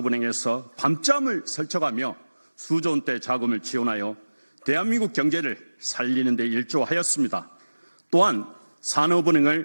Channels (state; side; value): inverted; both; correlation -1.00